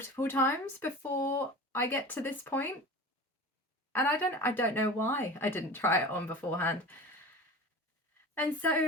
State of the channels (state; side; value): normal; both; correlation 0.35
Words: times before I get to this point. And I don't know why I didn't try it on beforehand. And so